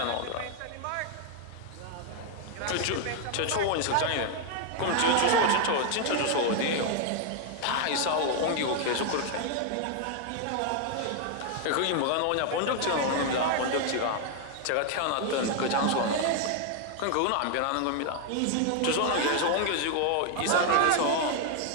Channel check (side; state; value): both; different; correlation 0.00